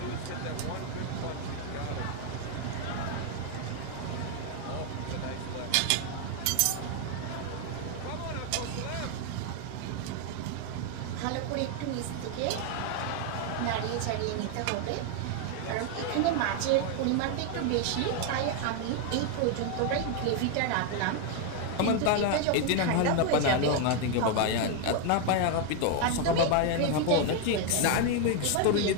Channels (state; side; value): different; both; correlation 0.01